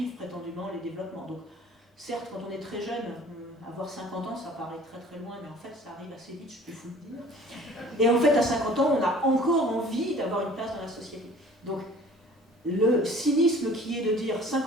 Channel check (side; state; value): both; normal; correlation 0.49